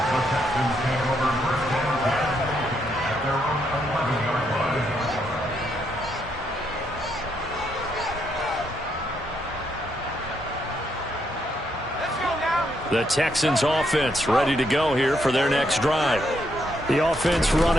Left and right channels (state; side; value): normal; both; correlation 0.76